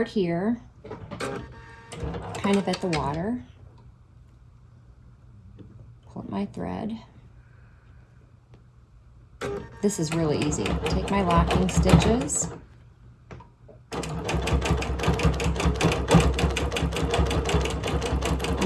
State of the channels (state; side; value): identical; both; correlation 1.00